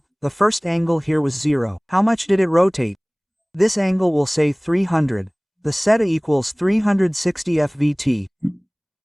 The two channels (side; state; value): both; identical; correlation 1.00